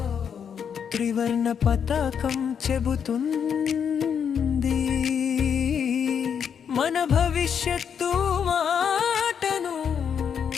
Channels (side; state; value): right; quieter; 7.5 dB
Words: త్రివర్ణ పతాకం చెబుతుంది మన భవిష్యత్తు మాటను.